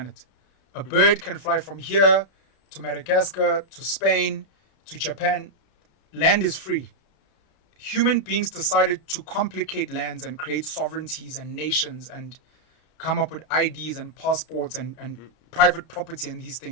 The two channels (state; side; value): late; right; 33 ms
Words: A bird can fly from here to Madagascar, to Spain, to Japan. Land is free. Human beings decided to complicate lands and create sovereignties and nations and come up with IDs and passports and private property and these